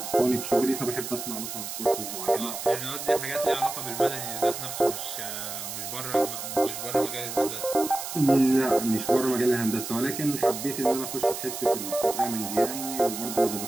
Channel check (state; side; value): noise; right; hiss, 7 dB below the sound